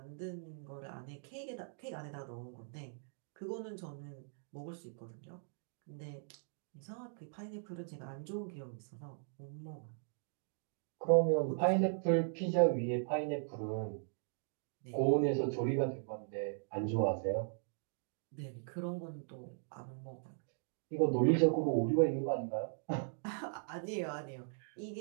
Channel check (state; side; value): silent; left; digital silence